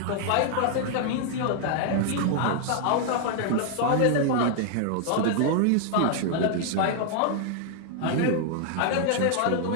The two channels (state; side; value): different; both; correlation 0.00